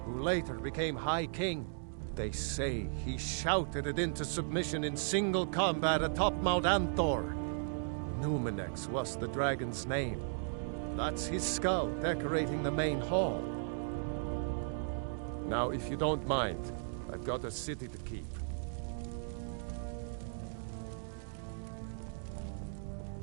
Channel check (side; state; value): left; silent; digital silence